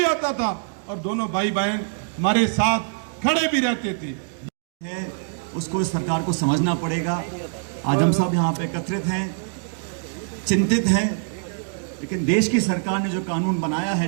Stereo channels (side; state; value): left; silent; digital silence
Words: आता था और दोनों भाई बहन हमारे साथ खड़े भी रहते थे। उसको इस सरकार को समझना पड़ेगा। आज हम सब यहाँ पे एकत्रित हैं, चिंतित हैं, लेकिन देश की सरकार ने जो कानून बनाया